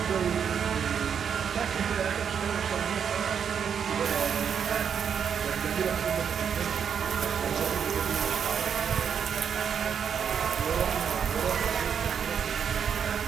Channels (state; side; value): quieter; left; 7.5 dB